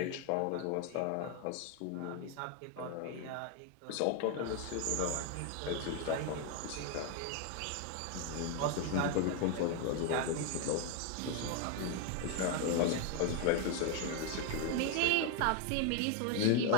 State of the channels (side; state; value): both; different; correlation 0.01